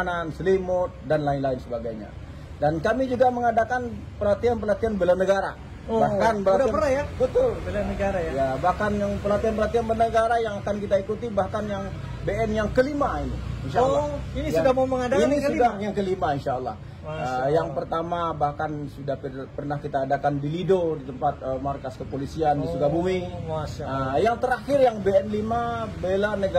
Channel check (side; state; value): both; identical; correlation 1.00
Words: selimut, dan lain-lain sebagainya. Dan kami juga mengadakan pelatihan-pelatihan bela negara. Bahkan udah pernah ya? Betul, bela negara ya. Ya, bahkan yang pelatihan-pelatihan bela negara yang akan kita ikuti, bahkan yang BN yang kelima ini, insya Allah. Ini sudah mau mengadakan ini sudah yang kelima, insya Allah. Allah. Yang pertama bahkan sudah pernah kita adakan di Lido, di tempat markas kepolisian di Sukabumi. Yang terakhir yang BN 5 bela